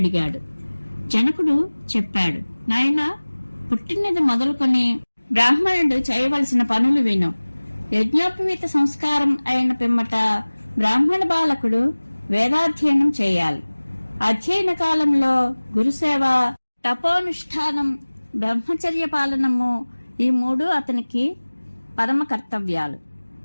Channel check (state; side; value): inverted; both; correlation -1.00